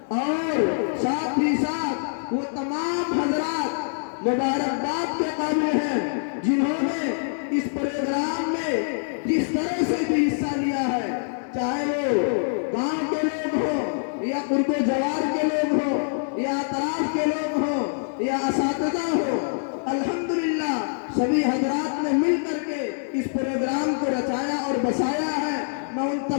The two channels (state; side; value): silent; right; digital silence